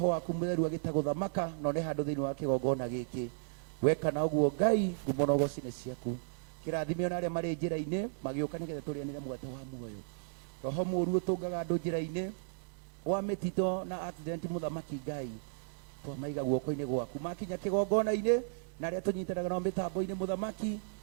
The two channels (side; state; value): left; silent; digital silence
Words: waku mutheru agitaguthamaka no ne handu thiini wa kigongona giki. Weka na uguo Ngai, ngumonogoci ni ciaku. Kirathimio na aria mari njira-ini magiuka nigetha turianire mwate wa muoyo. Roho muru utungaga andu njira-ini wa mitito na accident muthamaki Ngai, twamaiga guoko-ini gwaku, makinya kigongona-ini na aria tunyitanaga na mitambo-ini muthamaki,